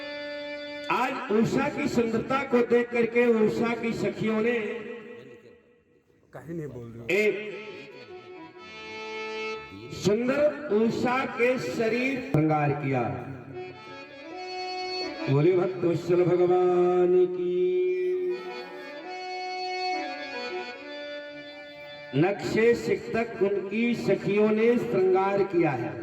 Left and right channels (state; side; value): identical; both; correlation 1.00